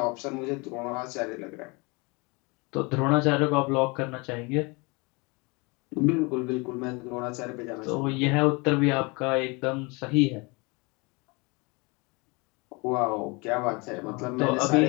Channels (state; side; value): quieter; right; 28.1 dB